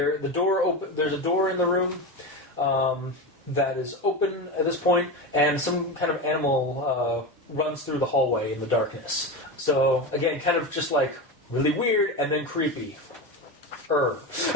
a door in the room that is open at this point, and some kind of animal runs through the hallway in the darkness. So, again, kind of just really weird and then creepy. And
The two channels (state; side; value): normal; both; correlation 0.21